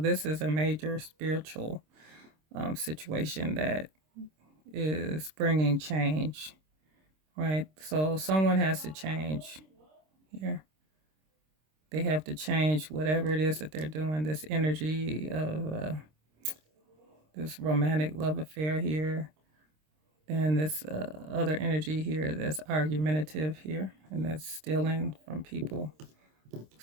is a major spiritual situation that is bringing change, right? So someone has to change here. They have to change whatever it is that they're doing. This energy of this romantic love affair here, then this other energy here that's argumentative here, and that's stealing from people,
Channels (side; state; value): left; late; 26 ms